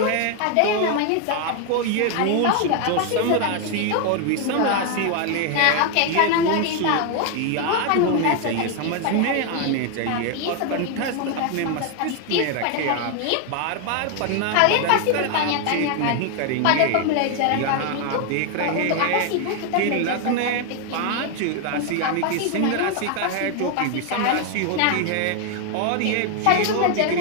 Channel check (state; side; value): different; both; correlation 0.01